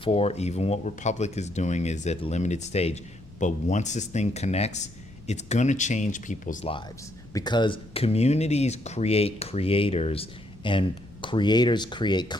Even what Republic is doing is at a limited stage. But once this thing connects, it's going to change people's lives, because communities create creators, and creators create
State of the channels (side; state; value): left; noise; rumble, 22 dB below the sound